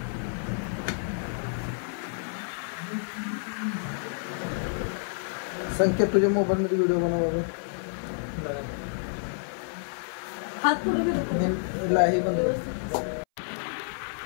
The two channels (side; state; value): right; silent; 58 dB below the other